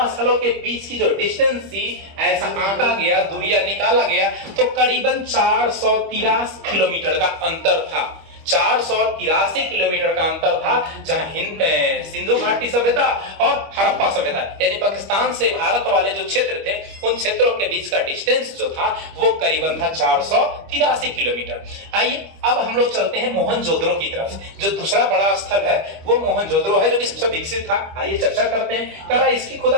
स्थलों के बीच की जो डिस्टेंस थी, ऐसा आंका गया, दूरिया निकाला गया, तो करीबन 483 किलोमीटर का अंतर था। 483 किलोमीटर का अंतर था, जहां सिंधु घाटी सभ्यता और हड़प्पा सभ्यता यानी पाकिस्तान से भारत वाले जो क्षेत्र थे, उन क्षेत्रों के बीच का डिस्टेंस जो था वो करीबन था 483 किलोमीटर। आइए अब हम लोग चलते हैं मोहनजोदड़ो की तरफ। जो दूसरा बड़ा स्थल है वो मोहनजोदड़ो है, जो कि सबसे विकसित था। आइए चर्चा करते हैं। करा इसकी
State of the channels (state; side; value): late; left; 25 ms